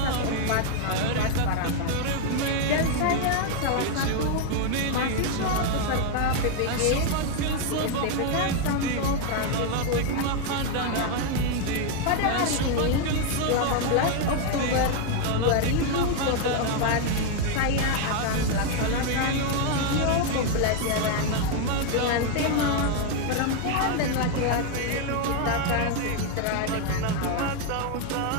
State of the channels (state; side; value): different; both; correlation 0.01